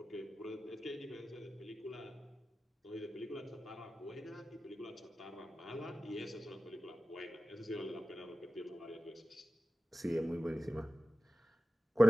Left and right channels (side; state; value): both; normal; correlation 0.95